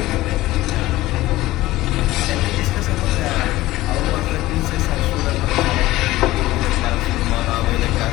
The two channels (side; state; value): right; quieter; 17.2 dB